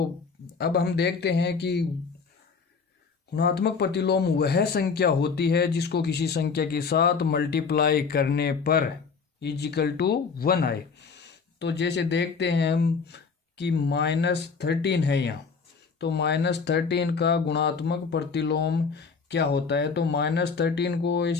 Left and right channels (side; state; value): right; quieter; 5.3 dB